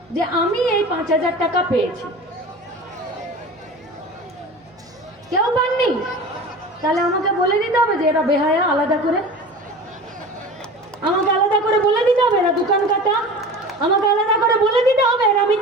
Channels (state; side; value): normal; both; correlation 0.35